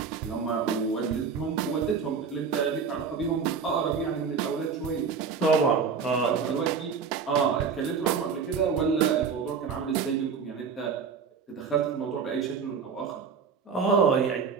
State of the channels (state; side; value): quieter; left; 5.9 dB